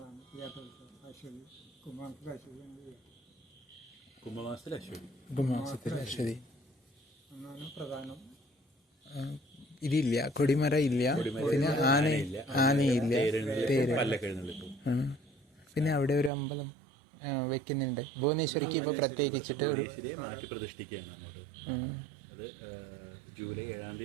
തീയാട്ടോത്സവം. അശ്വതി കുംഭമാസത്തിൽ അശ്വതി എന്നാണ് പ്രധാനം. ഇതില്ല, കൊടിമര ഇല്ല, പിന്നെ ആനയില്ല, തേര്. പിന്നെ അവിടെ ഒരു അമ്പലം വെക്കുന്നുണ്ട് ഭുവനേശ്വരിക്ക്. ഇപ്പൊ പ്രത്യേകിച്ചിട്ട് ഒരു മാറ്റി പ്രതിഷ്ഠിക്കുകയാണ് അങ്ങോട്ട്. അത് ജൂലൈ 7-ാം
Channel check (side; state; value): left; drops out; at 16.3 s